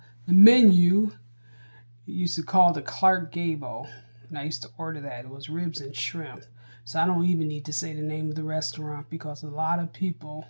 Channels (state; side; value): inverted; both; correlation -1.00